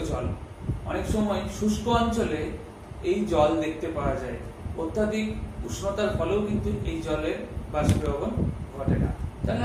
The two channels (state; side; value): identical; both; correlation 1.00